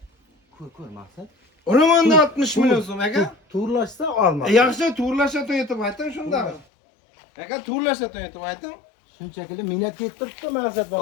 Ko'r maksat. Urumanda 60 milyon so'm aka. To'g'rilashsa olma. Yaxshi to'g'rilashga to'yitib ayting shunda. Aka to'g'rilashga to'yitib ayting. Shunchaki minnat yettiribdi maksat.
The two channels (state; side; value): drops out; right; at 6.7 s